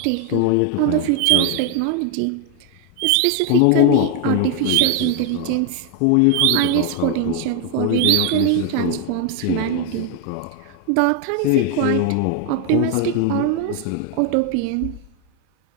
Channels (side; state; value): both; different; correlation 0.01